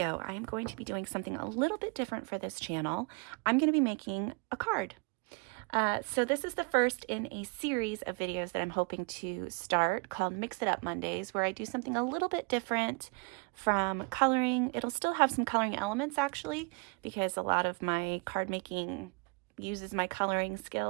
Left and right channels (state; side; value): quieter; left; 33.8 dB